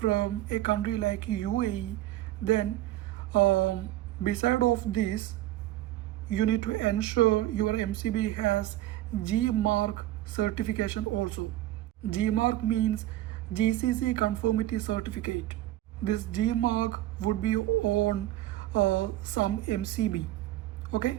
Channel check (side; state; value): left; quieter; 14.9 dB